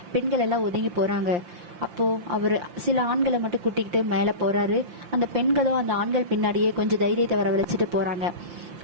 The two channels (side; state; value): left; late; 5.8 ms